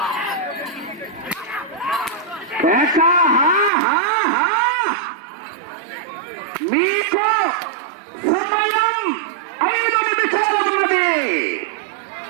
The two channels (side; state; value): left; drops out; at 3.7 s